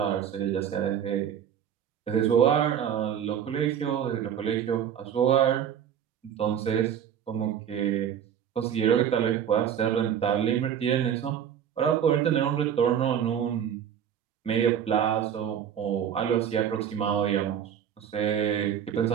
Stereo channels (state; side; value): quieter; left; 8.9 dB